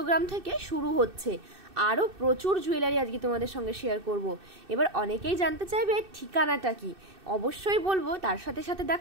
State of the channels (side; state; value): left; late; 2.6 ms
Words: গ্রাম থেকে শুরু হচ্ছে। আরও প্রচুর জুয়েলারি আজকে তোমাদের সঙ্গে শেয়ার করব। এবার অনেকেই জানতে চাইবে ঠিকানাটা কি, অবশ্যই বলবো। তার সাথে সাথে